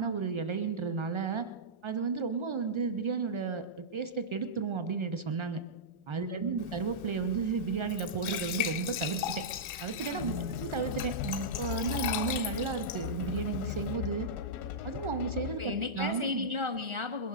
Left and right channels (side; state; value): left; late; 1.4 ms